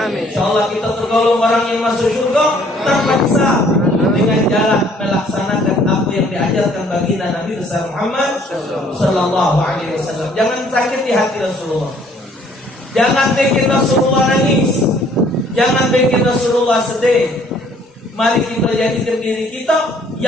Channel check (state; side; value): normal; both; correlation 0.60